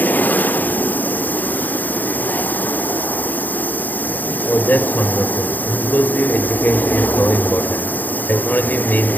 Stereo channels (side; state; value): right; late; 0.086 ms